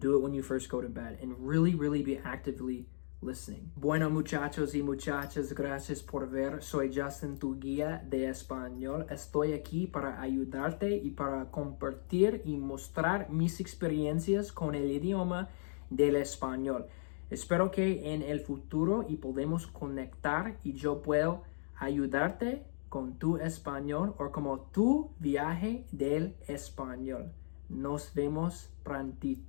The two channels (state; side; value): silent; right; digital silence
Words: it when you first go to bed, and really be actively listening. Bueno, muchachos y muchachas, gracias por ver. Soy Justin, tu guía de español. Estoy aquí para ayudarte y para compartir y mostrar mis experiencias con el idioma del español. Espero que en el futuro y podemos conectar y yo puedo ayudarte con tu español o como tu viaje del español. Nos vemos